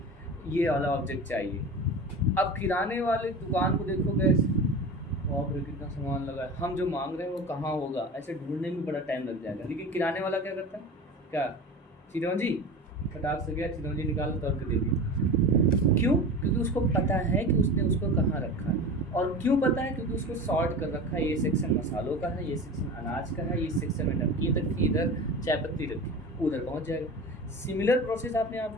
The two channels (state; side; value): normal; both; correlation 0.32